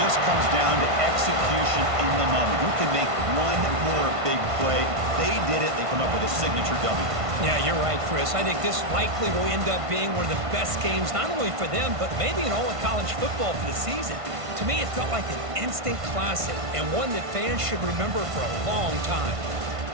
comes down to execution in the moment. Who can make one more big play? They did it. They come up with a signature W. Yeah, you're right, Chris. I think this likely will end up being one of the best games, not only for them, but maybe in all of college football for the season. To me, it felt like an instant classic and one that fans should remember for a long time.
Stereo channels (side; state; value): left; late; 1.5 ms